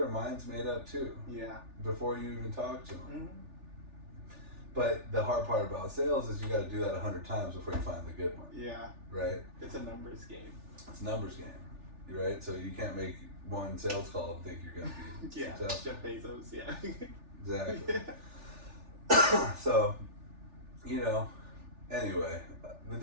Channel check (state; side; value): late; left; 3.4 ms